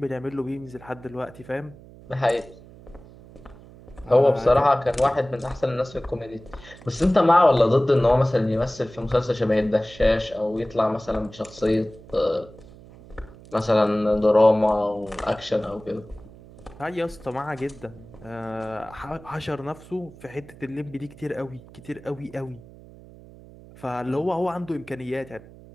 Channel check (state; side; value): noise; right; hum, 20 dB below the sound